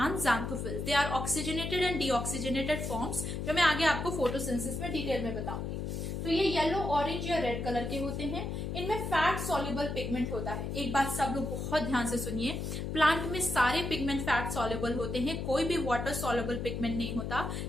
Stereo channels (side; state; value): left; noise; hum, 4 dB below the sound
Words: xanthophyll. They are oxygenated and deoxygenated forms, जो मैं आगे आपको फोटोसिंथेसिस में डिटेल में बताऊंगी। तो ये येलो, ऑरेंज या रेड कलर के होते हैं। इनमें फैट सॉल्युबल पिगमेंट होता है। एक बात सब लोग बहुत ध्यान से सुनिए, प्लांट में सारे पिगमेंट फैट सॉल्युबल होते हैं, कोई भी वाटर सॉल्युबल पिगमेंट नहीं होता